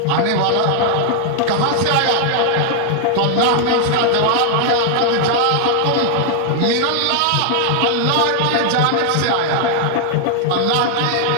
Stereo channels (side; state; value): both; different; correlation 0.00